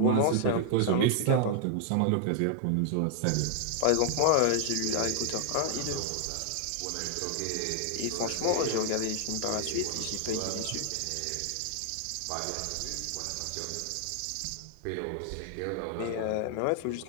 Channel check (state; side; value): different; both; correlation 0.00